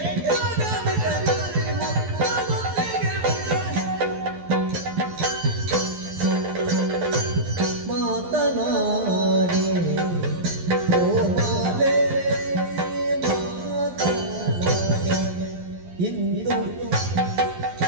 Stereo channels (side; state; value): left; late; 12 ms